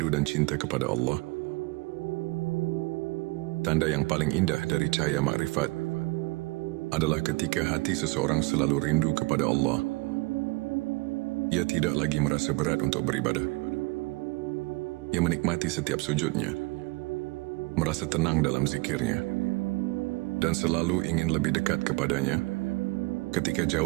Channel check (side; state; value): left; quieter; 25.2 dB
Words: dan cinta kepada Allah. Tanda yang paling indah dari cahaya makrifat adalah ketika hati seseorang selalu rindu kepada Allah. Ia tidak lagi merasa berat untuk beribadah. Ia menikmati setiap sujudnya, merasa tenang dalam zikirnya, dan selalu ingin lebih dekat kepadanya. Ketika